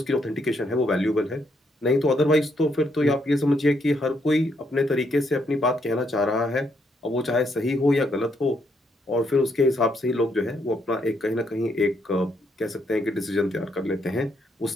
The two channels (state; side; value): normal; both; correlation 0.75